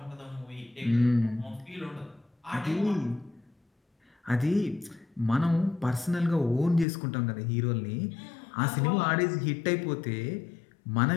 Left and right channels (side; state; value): right; drops out; at 6.9 s